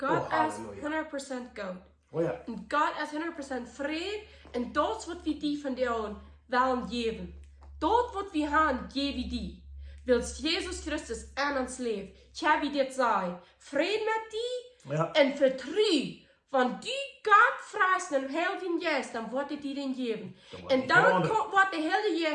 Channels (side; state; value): both; identical; correlation 1.00